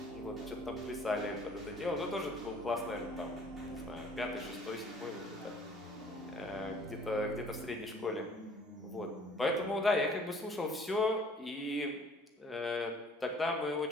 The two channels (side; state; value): both; normal; correlation 0.54